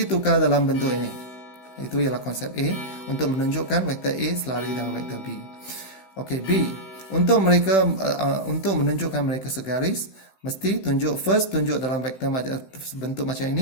tukar dalam bentuk ini. Itu ialah konsep A untuk menunjukkan vektor A selari dengan vektor B. Okey, B. Untuk menunjukkan mereka segaris, mesti tunjuk dalam vektor bentuk macam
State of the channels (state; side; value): late; right; 16 ms